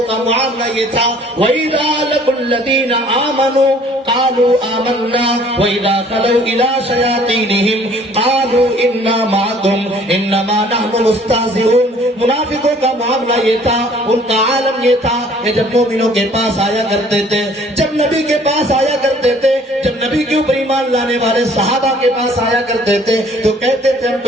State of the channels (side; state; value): both; normal; correlation 0.56